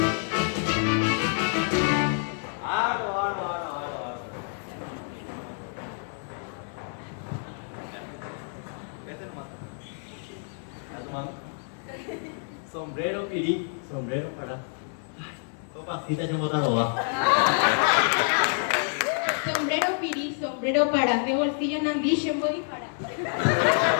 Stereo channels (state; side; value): silent; right; 60 dB below the other